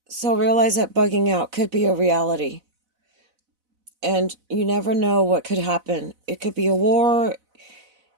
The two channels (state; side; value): late; left; 4.0 ms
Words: So realize that bugging out could be a reality. And you never know what could happen. It could be a war.